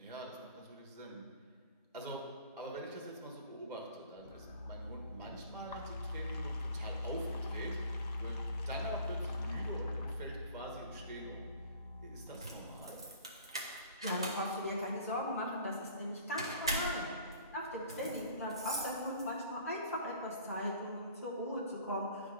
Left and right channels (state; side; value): inverted; both; correlation -0.49